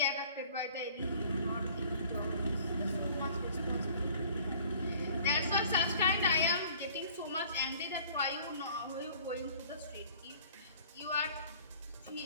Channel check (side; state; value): both; inverted; correlation -0.52